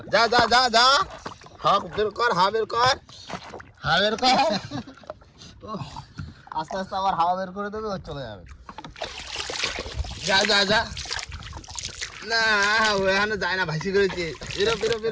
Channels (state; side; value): identical; both; correlation 1.00